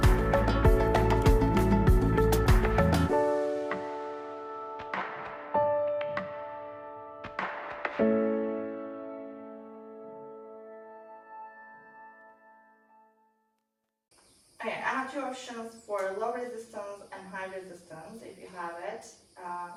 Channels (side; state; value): both; identical; correlation 1.00